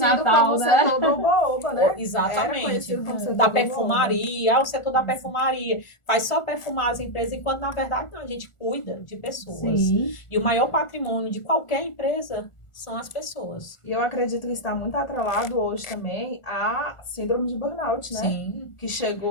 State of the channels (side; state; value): right; late; 1.4 ms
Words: né? Setor do oba-oba, né? Exatamente. Da perfumaria, o setor da perfumaria faz só perfumar as empresas, enquanto na verdade não, a gente cuida de pessoas. Sim. E o maior patrimônio de qualquer empresa são as pessoas. E eu acredito que está muito atrelado hoje também à síndrome de burnout, né? Sim. Que